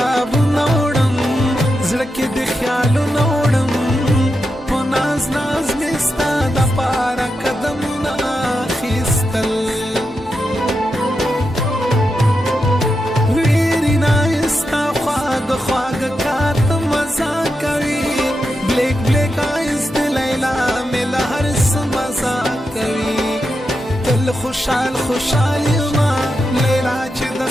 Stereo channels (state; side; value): normal; both; correlation 0.87